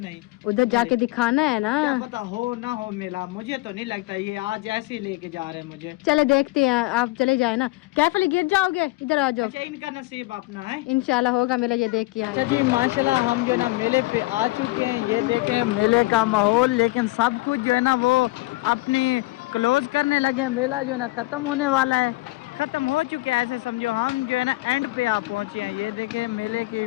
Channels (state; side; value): quieter; right; 20.9 dB